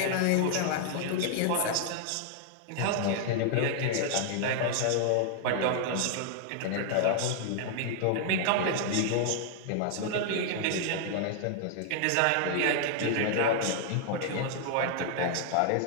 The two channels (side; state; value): both; different; correlation 0.00